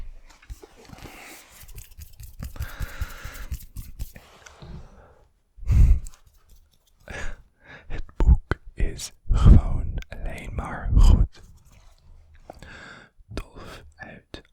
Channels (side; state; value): both; identical; correlation 1.00